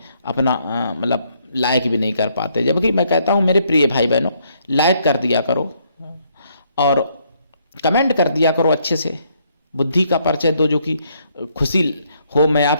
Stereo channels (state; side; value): inverted; both; correlation -0.71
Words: अपना मतलब लाइक भी नहीं कर पाते। जबकि मैं कहता हूं मेरे प्रिय भाई बहनों, लाइक कर दिया करो और कमेंट कर दिया करो, अच्छे से बुद्धि का परिचय दो, जो कि खुशी हो, मैं